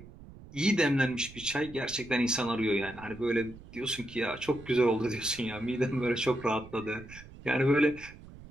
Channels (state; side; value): noise; right; rumble, 18 dB below the sound